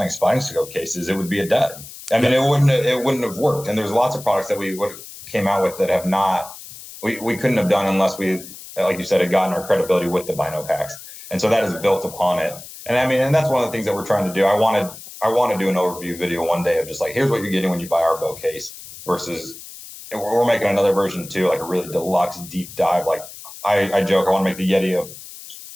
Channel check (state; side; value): noise; left; hiss, 15 dB below the sound